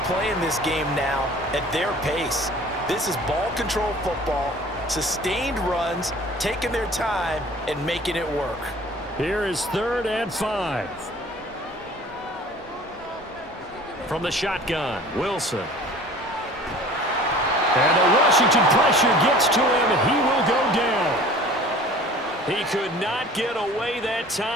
playing this game now at their pace. This is ball control football, sustained runs, taking their time and making it work. Here is 3rd and 5. From the shotgun, Wilson. And the Washington pressure gets to him, and he will go down. He could not get away that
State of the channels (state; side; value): normal; both; correlation 0.46